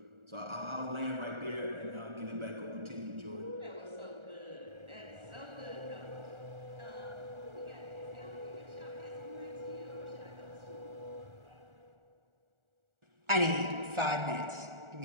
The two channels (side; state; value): left; late; 1.4 ms